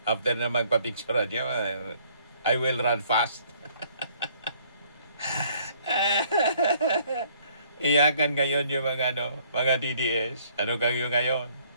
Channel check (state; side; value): inverted; both; correlation -0.61